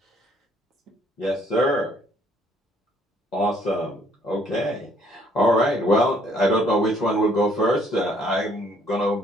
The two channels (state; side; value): normal; both; correlation 0.64